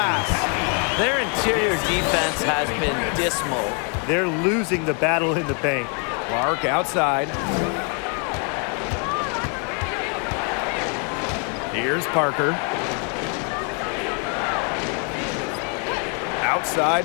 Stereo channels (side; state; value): right; quieter; 39.1 dB